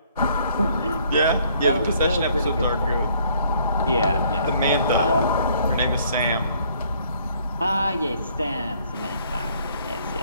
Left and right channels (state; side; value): inverted; both; correlation -0.63